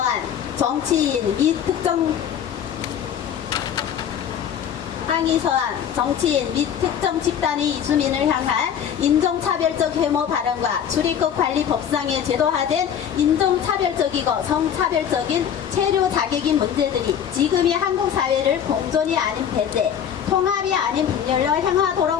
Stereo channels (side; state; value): right; quieter; 8.7 dB